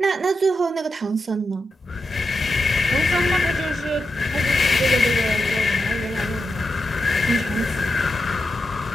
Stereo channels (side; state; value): both; normal; correlation 0.87